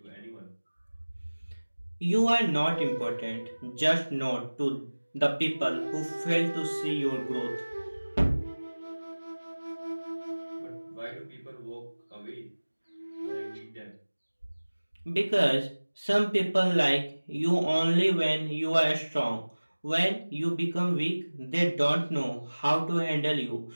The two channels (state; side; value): inverted; both; correlation -1.00